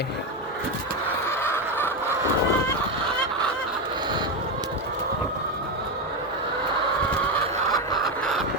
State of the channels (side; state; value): both; normal; correlation 0.11